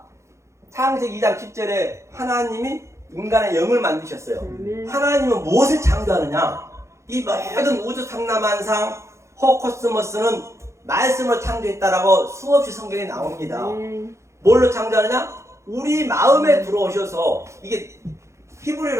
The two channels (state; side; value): late; left; 0.14 ms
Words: 창세기 2장 10절에 하나님이 인간의 영을 만드셨어요. 하나님은 무엇을 창조하느냐? 이 모든 우주 상남한상 호코스모스는 말씀으로 창조했다라고 수없이 성경에 나옵니다. 뭘로 창조하느냐? 우리 마음에 들어오셔서 이게